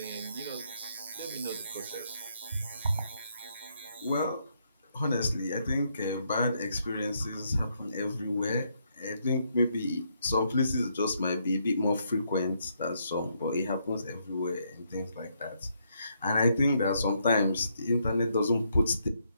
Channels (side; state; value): both; inverted; correlation -0.75